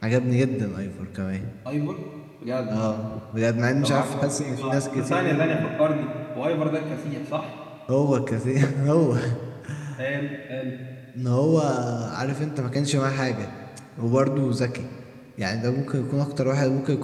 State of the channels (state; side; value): identical; both; correlation 1.00